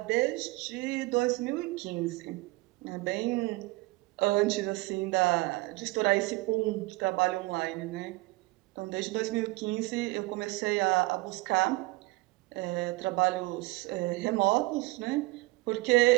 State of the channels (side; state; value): left; quieter; 22.4 dB